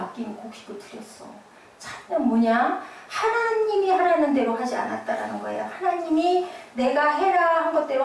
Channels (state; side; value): identical; both; correlation 1.00